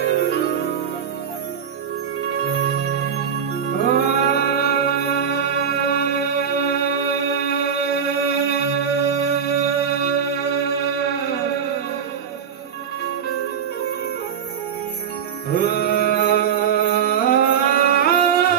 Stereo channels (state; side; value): quieter; left; 7.6 dB